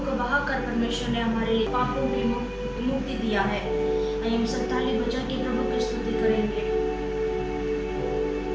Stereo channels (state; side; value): identical; both; correlation 1.00